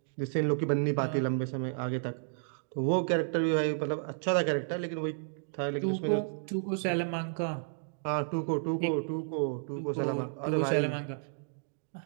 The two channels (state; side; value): silent; left; digital silence